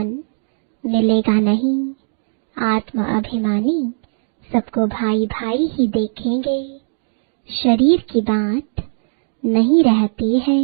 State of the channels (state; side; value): silent; left; digital silence